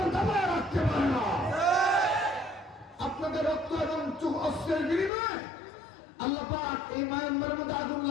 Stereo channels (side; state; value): right; drops out; at 5.1 s